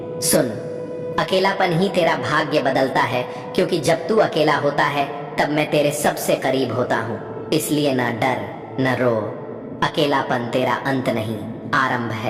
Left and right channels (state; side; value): identical; both; correlation 1.00